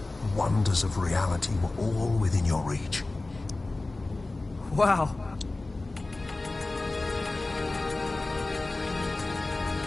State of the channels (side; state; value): right; quieter; 3.1 dB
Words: wonders of reality were all within your reach. Wow.